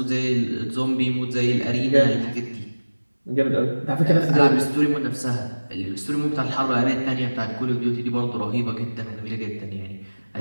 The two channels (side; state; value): both; inverted; correlation -1.00